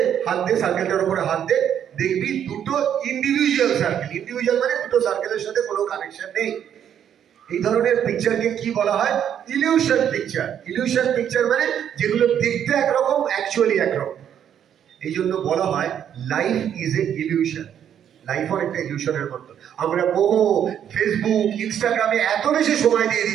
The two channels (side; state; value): left; quieter; 9.3 dB